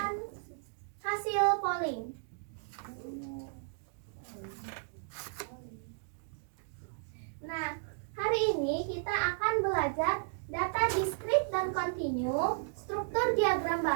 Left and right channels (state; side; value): silent; left; digital silence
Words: hasil polling. Nah, hari ini kita akan belajar data diskrit dan kontinu, struktur diagram